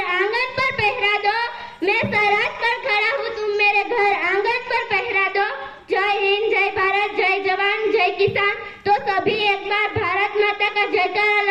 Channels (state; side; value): identical; both; correlation 1.00